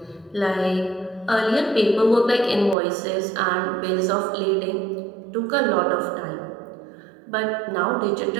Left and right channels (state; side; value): drops out; left; at 2.8 s